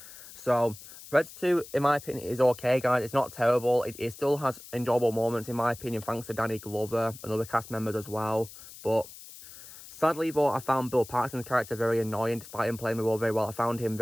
So, Predator 2, in my opinion, is okay, guys. It's not terrible. It still has enjoyable moments, in my opinion, thanks to Danny Glover and other cast members as well. But sadly, though, I found Bill Paxton's character very annoying, despite him playing the role very well. I found him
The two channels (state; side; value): noise; left; hiss, 17 dB below the sound